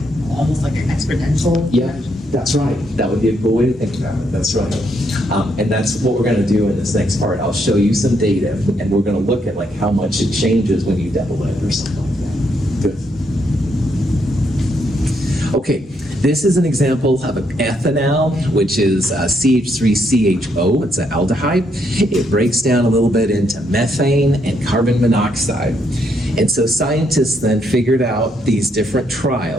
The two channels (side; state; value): both; normal; correlation 0.75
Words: almost like an exponential. Yeah, that's right. That would be a cool way to think about it. That's right. And that's what we're going to do in this next part. I'll show you some data, and we're going to look at like how much it changes when you double it or something like that. Good. Okay. This is an example of an ethanol, which is CH3CHO. It's an aldehyde. It breaks down a little bit into methane and carbon monoxide. And so scientists then figured out these different